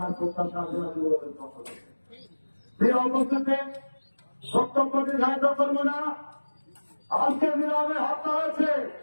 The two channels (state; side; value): inverted; both; correlation -1.00